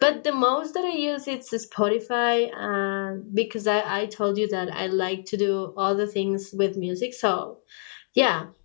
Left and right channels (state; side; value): silent; right; digital silence